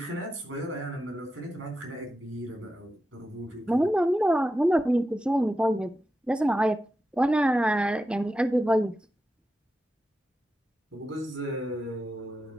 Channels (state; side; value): normal; both; correlation 0.90